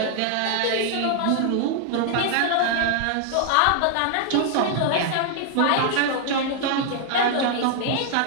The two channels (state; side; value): different; both; correlation 0.00